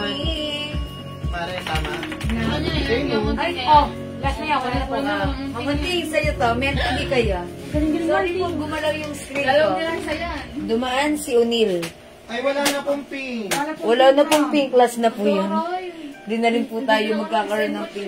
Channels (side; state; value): both; identical; correlation 1.00